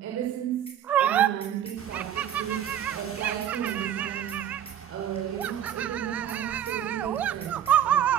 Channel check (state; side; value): quieter; left; 10.3 dB